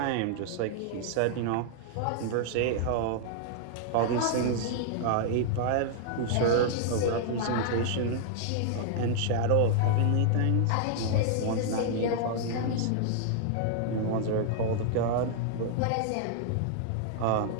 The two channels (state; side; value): different; both; correlation -0.01